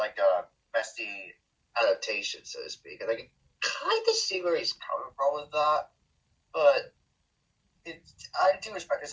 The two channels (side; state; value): both; identical; correlation 1.00